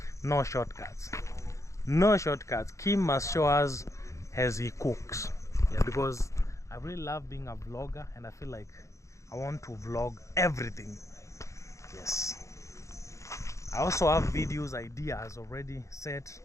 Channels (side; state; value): right; late; 0.15 ms